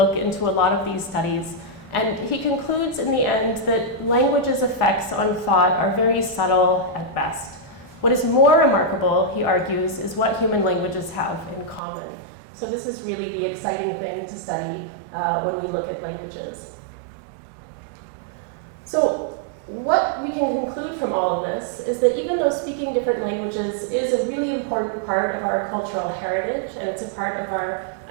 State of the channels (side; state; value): left; drops out; at 11.8 s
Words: into a lot of these studies. And he concludes in the end that language's effects on thought are very subtle at best. What is more remarkable, he argues, is what human languages have in common. So this is really the exciting thing to study when we look at languages. So what we can conclude from all of this is that even though speaking different languages is a really important part of our cultural heritage, and it's a part of our